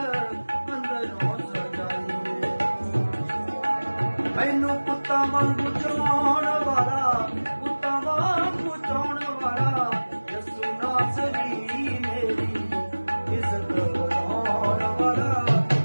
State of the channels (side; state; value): both; inverted; correlation -1.00